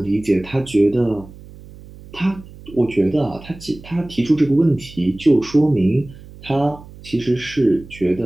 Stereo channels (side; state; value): right; noise; hum, 19 dB below the sound